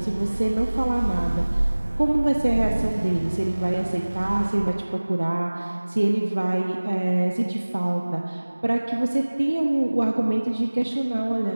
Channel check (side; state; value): both; inverted; correlation -1.00